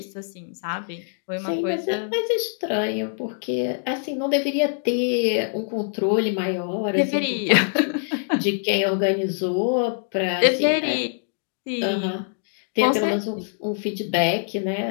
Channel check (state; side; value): silent; right; digital silence